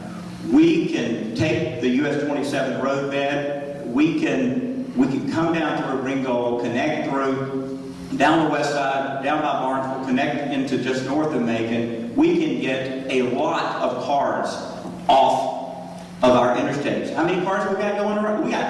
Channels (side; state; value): both; identical; correlation 1.00